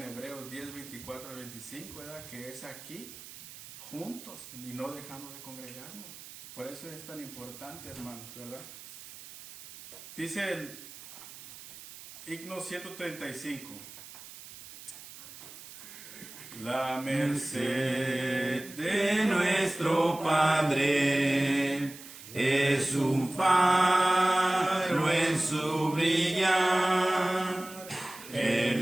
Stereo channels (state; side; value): noise; right; hiss, 15 dB below the sound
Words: Hebreos 10:24-25, ¿verdad? Que es aquí, juntos y no dejando de congregarnos. Por eso es tan importante, hermanos, ¿verdad? Dice el himno 135. La merced de nuestro Padre es un faro en su brillar.